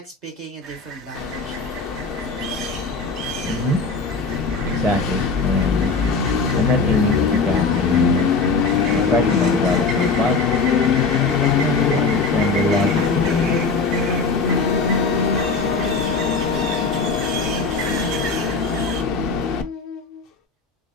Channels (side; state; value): right; quieter; 4.3 dB